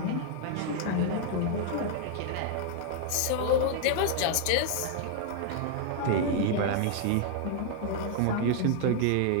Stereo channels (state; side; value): different; both; correlation 0.00